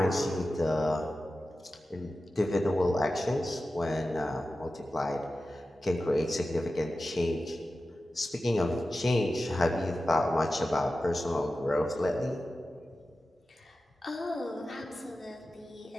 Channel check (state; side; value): normal; both; correlation 0.94